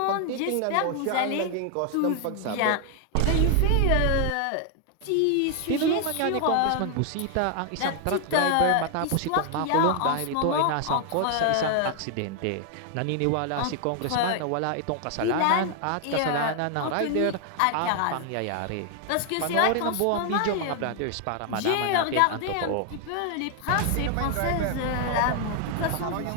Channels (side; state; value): both; different; correlation 0.00